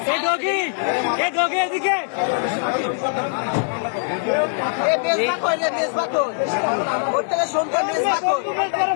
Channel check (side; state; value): right; silent; digital silence